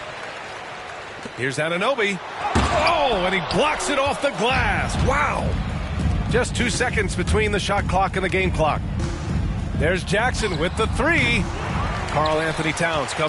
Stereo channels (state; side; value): identical; both; correlation 1.00